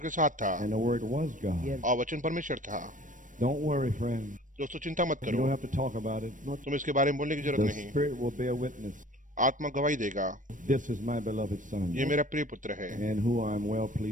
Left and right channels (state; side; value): late; left; 0.38 ms